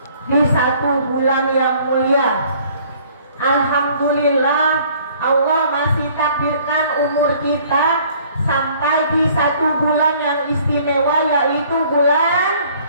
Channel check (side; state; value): both; inverted; correlation -0.57